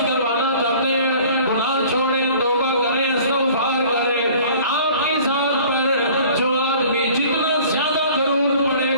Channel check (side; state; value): both; inverted; correlation -0.48